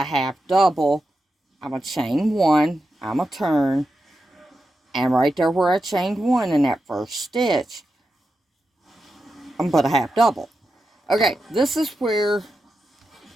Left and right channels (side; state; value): both; normal; correlation 0.89